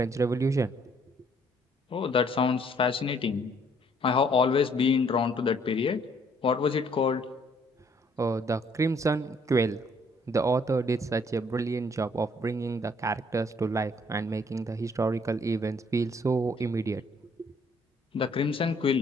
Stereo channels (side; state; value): both; normal; correlation 0.64